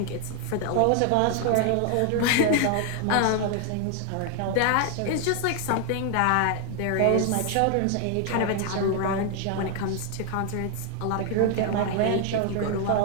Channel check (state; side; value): different; both; correlation 0.00